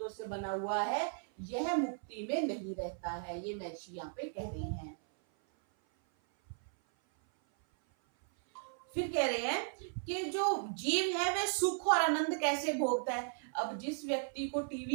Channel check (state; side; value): silent; left; 54 dB below the other